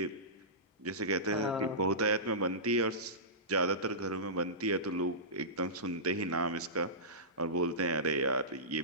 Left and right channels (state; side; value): normal; both; correlation -0.20